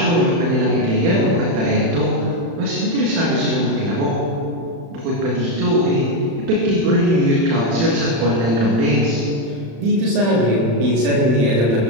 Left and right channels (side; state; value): left; late; 35 ms